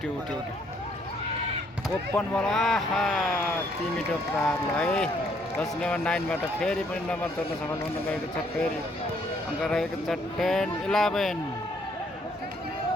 ओपन बल आहा 3 मिटर प्रार ल है 10 नम्बर 9 बाट फेरि पनि नम्बर तोड्न सफल हुन गएको छ फेरि अङ्क रहेको छ 10-11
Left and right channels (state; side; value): normal; both; correlation 0.67